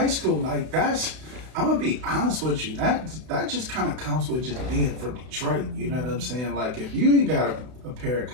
school. Like that's, I'm gonna be honest with you. That just kind of comes with just being from Detroit. You know what I'm saying? Like if you ain't got a pair of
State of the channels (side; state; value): left; late; 32 ms